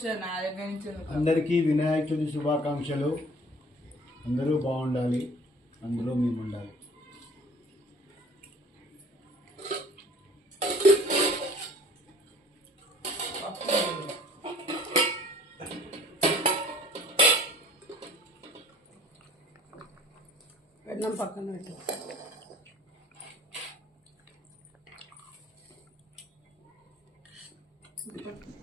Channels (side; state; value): both; normal; correlation 0.51